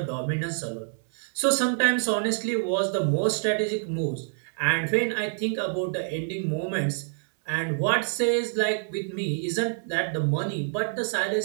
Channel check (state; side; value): silent; left; 60 dB below the other